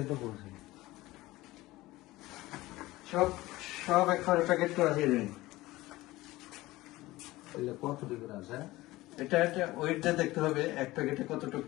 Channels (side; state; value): right; quieter; 18.5 dB